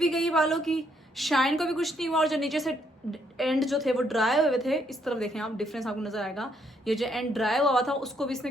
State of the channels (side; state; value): both; normal; correlation 0.72